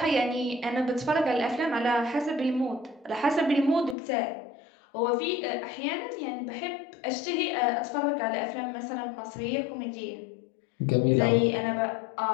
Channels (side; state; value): right; drops out; at 4.0 s